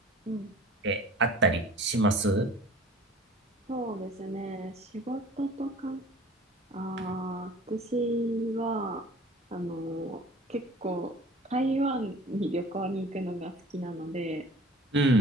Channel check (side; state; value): both; normal; correlation 0.46